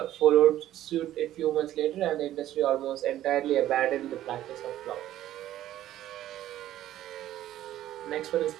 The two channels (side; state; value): left; quieter; 13.1 dB